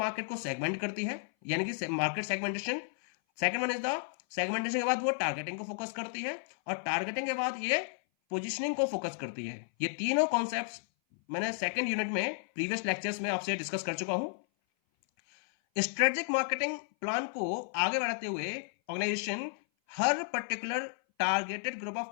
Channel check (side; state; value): right; silent; 56 dB below the other